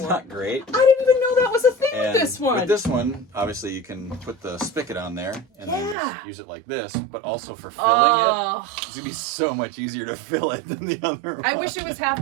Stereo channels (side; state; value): left; drops out; at 6.0 s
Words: not great. I didn't even know that was a thing with this one. With this one, obviously you can put the spigot on there and then just use it like this, but also for filling it, it's going to be so much easier to fill it than the other one. I wish it was half